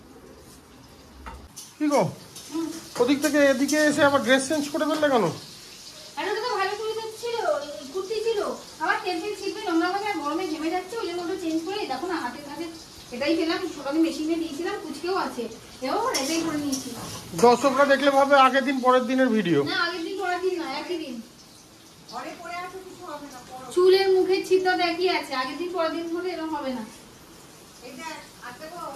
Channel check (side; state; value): both; identical; correlation 1.00